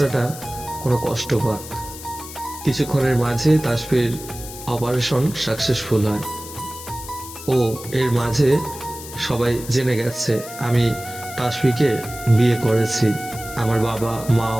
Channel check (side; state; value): left; noise; hiss, 13 dB below the sound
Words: কোনো কষ্ট পাক। কিছুক্ষণের মাঝে তাসফির অপারেশন সাকসেসফুল হয়। ও এর মাঝে সবাই জেনে গেছে আমি তাসফিকে বিয়ে করেছি। আমার বাবা